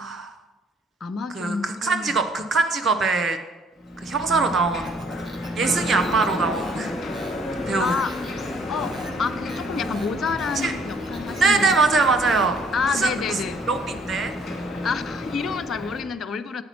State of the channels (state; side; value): normal; both; correlation 0.62